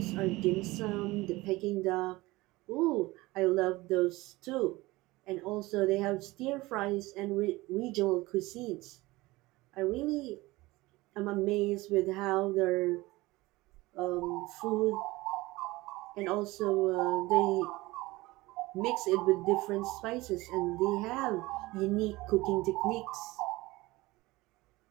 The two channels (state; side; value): quieter; left; 20.5 dB